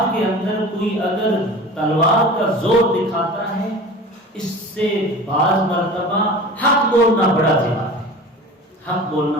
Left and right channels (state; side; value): normal; both; correlation 0.37